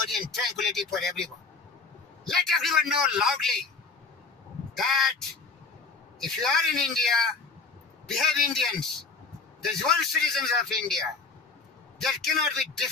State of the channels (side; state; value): right; quieter; 4.5 dB